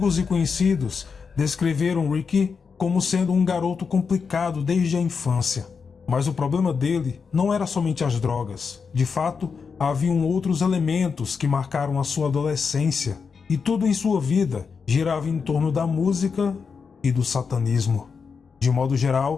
e conhecidos descreveram Ricky como sendo um garoto complicado desde a infância. Mas o problema dele não era somente as drogas. De fato, haviam outros elementos que marcaram a sua adolescência, e tudo em sua vida girava em torno da música e do satanismo. De modo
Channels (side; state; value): right; quieter; 5.6 dB